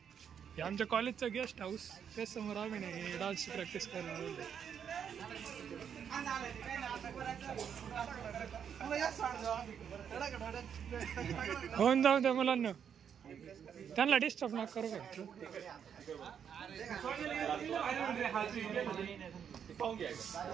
हे आमच्या कॉलेजचं गेस्ट हाऊस त्या समोर आम्ही नाही डान्सची प्रॅक्टिस करायला होऊन जाऊ द्या मुलांना त्यांना डिस्टर्ब नका करू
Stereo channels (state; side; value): quieter; left; 8.0 dB